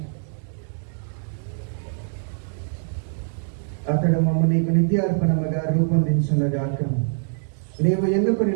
అతడు మమ్మ నీకు నిత్యార్పణముగా రూపొందించున్నగాక. నీవు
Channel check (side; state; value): left; silent; 63 dB below the other